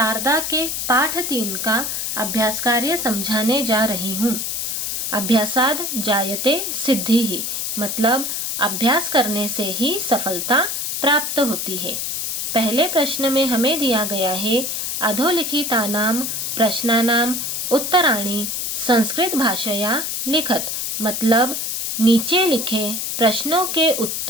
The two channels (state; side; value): noise; left; hiss, 2 dB below the sound